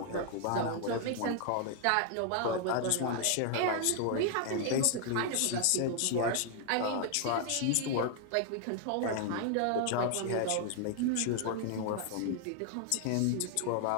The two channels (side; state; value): both; different; correlation 0.00